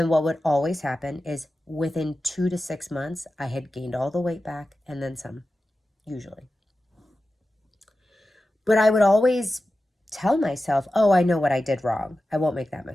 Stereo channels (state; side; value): normal; both; correlation 0.93